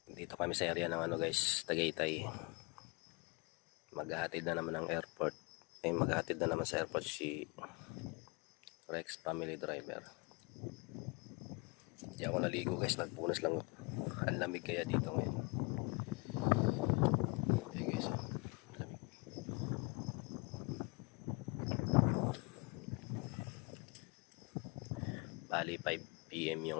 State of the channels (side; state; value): right; quieter; 30.0 dB